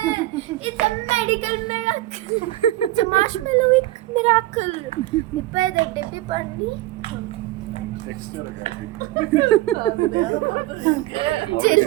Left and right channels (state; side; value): quieter; left; 17.1 dB